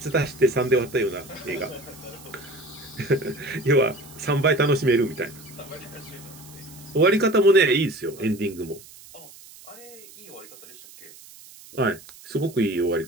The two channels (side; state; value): right; noise; hiss, 20 dB below the sound